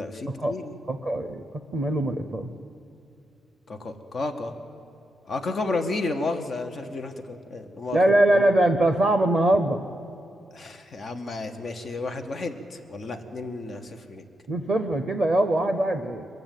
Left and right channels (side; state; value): both; normal; correlation 0.84